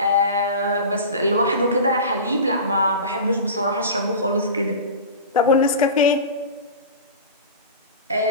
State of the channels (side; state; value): both; inverted; correlation -0.31